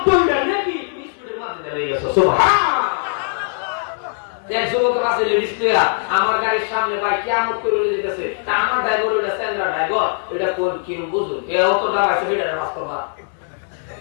মিটার নাকি তুমি স্পিডের মধ্যে লেগে গেছো। সুবহানাল্লাহ। এক যুবক আছে লেডিস প্লেয়ার, আমার গাড়ির সামনে ভাই কিয়ামত করে যেতেছে, তা আমার ড্রাইভার ওইটা স্ট্যান্ডার্ড ড্রাইভার, ওইটা কোন কি বুঝুন কেউ তো দাঁড়াইছে সেটা বাস্তবতা।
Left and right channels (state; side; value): silent; right; 66 dB below the other